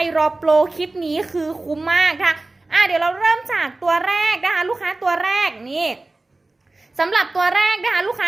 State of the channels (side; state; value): left; quieter; 3.1 dB